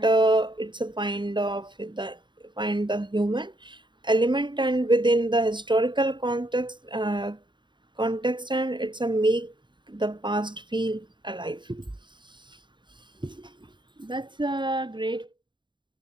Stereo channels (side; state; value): left; late; 0.23 ms